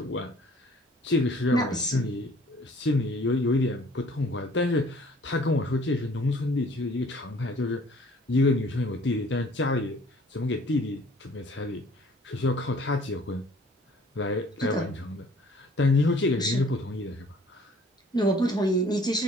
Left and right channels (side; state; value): both; normal; correlation 0.54